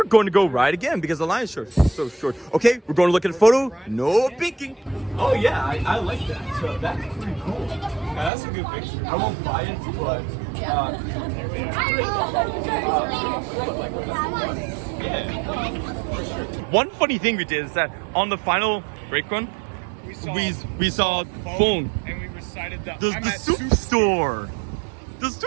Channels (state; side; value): drops out; left; at 8.3 s